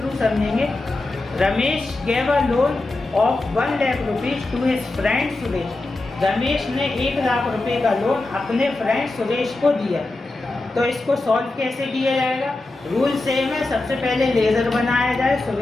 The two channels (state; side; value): quieter; right; 3.0 dB